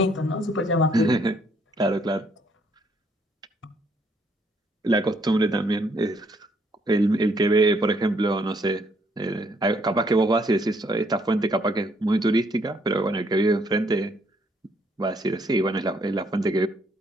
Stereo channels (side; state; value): both; normal; correlation 0.69